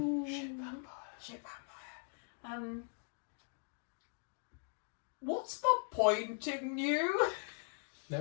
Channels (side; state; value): right; silent; 51 dB below the other